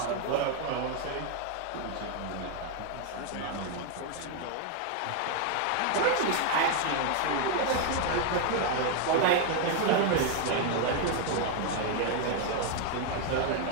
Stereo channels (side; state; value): both; different; correlation 0.00